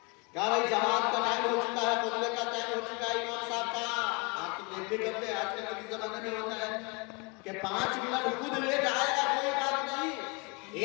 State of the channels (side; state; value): right; quieter; 30.6 dB